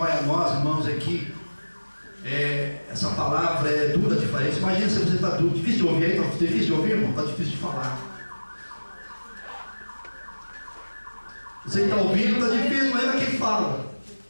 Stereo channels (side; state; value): both; inverted; correlation -1.00